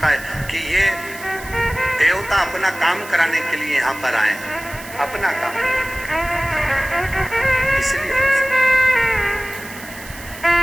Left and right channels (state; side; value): noise; right; hiss, 16 dB below the sound